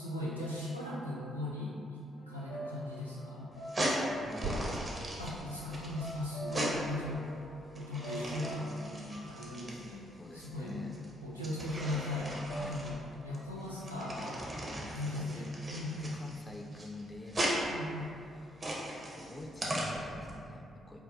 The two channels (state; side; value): normal; both; correlation 0.67